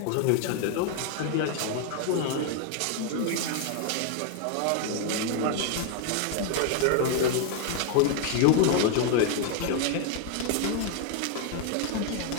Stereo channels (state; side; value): different; both; correlation 0.00